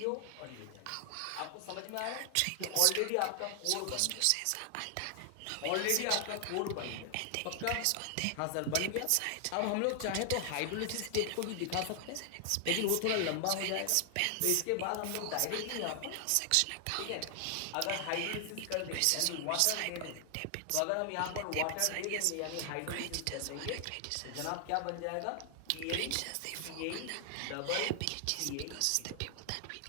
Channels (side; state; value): both; different; correlation 0.00